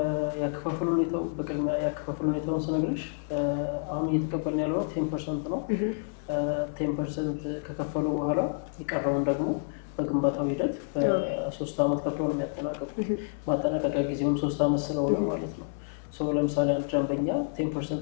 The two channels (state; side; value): silent; right; digital silence